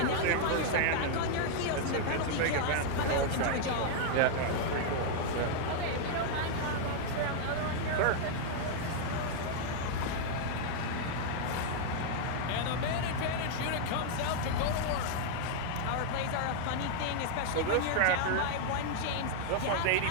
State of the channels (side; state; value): both; different; correlation -0.01